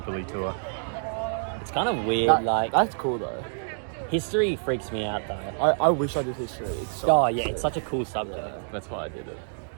tour. It's kind of weird. That's cool though. History freaks me out though. I wish I did history. It's so Oh yeah, it's such a cool subject. That's why I did it.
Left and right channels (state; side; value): silent; left; digital silence